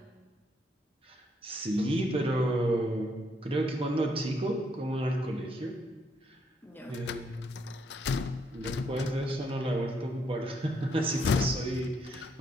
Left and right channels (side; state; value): both; normal; correlation 0.73